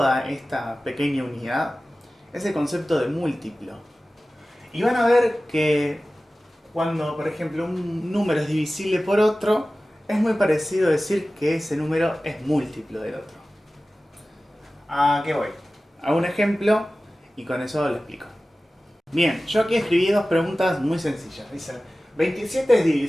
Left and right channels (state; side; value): normal; both; correlation 0.96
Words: esta pequeña unidad es el concepto de múltiplo. Y van a ver que cuando, por ejemplo, un número es divisible por otro, es muy parecido decir que ese número es múltiplo del otro. ¿A qué voy? A un ejemplo y con eso lo explico. Bien, yo aquí escribí dos preguntas muy sencillas. Dice, ¿27 es